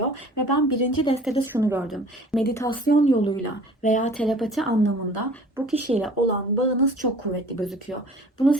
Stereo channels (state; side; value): normal; both; correlation 0.48